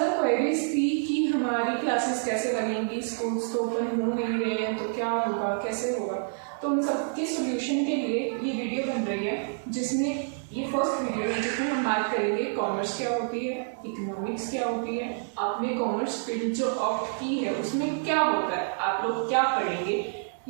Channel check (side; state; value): left; silent; digital silence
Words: क्वेरीज थी कि हमारी क्लासेस कैसे लगेंगी, स्कूल्स तो ओपन हो नहीं रहे हैं तो क्या होगा, कैसे होगा। तो उन सब के सोल्यूशन के लिए ये वीडियो बन रही है, जिसमें ये फर्स्ट वीडियो है जिसमें हम बात करेंगे कॉमर्स क्या होती है, इकोनॉमिक्स क्या होती है, आपने कॉमर्स फील्ड जो ऑप्ट की है उसमें क्या होता है, आप लोग क्या पढ़ेंगे,